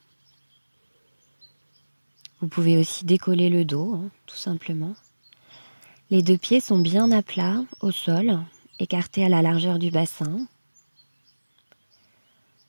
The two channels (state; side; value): inverted; both; correlation -1.00